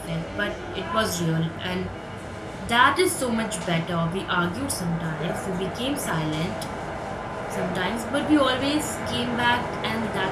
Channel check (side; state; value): both; identical; correlation 1.00